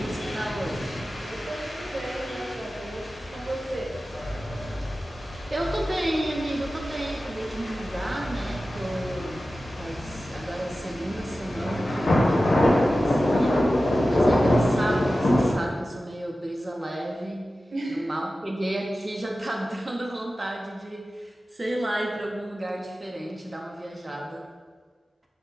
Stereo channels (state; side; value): normal; both; correlation 0.95